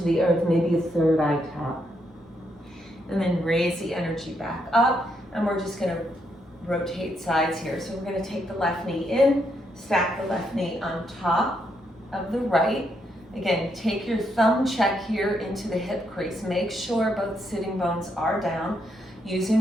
the earth, maybe a third eye top. And then raise the energy back up, and we're just going to rotate sides here. So we're going to take the left knee in, stack the left knee on top of the right. Again, take your thumb check here into the hip crease. Make sure both sitting bones are down. Using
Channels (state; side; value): normal; both; correlation 0.77